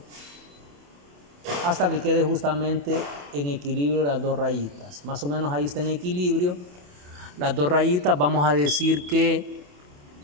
Hasta que quede justamente en equilibrio las dos rayitas. Más o menos ahí está en equilibrio. Las dos rayitas, vamos a decir que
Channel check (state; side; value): late; left; 28 ms